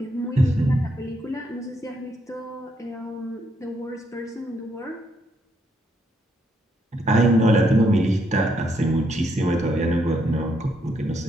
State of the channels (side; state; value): both; normal; correlation 0.75